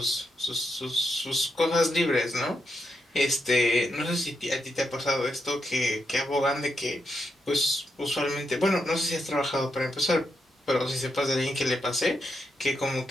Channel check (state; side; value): normal; both; correlation 0.82